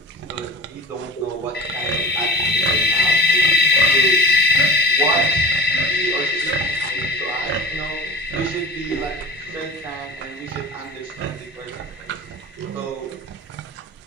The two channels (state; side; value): normal; both; correlation 0.36